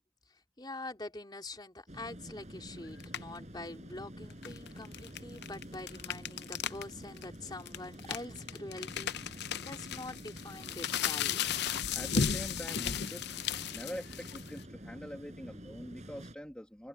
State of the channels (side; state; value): right; quieter; 5.3 dB